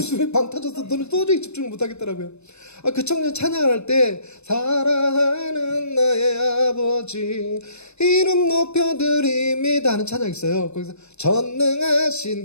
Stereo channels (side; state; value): right; late; 0.81 ms